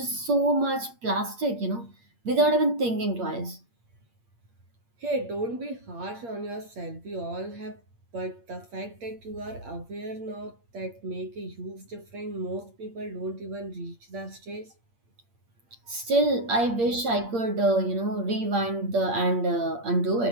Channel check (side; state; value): left; late; 8.6 ms